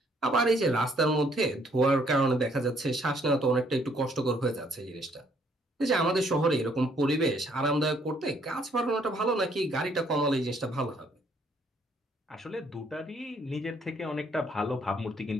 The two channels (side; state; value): both; normal; correlation 0.66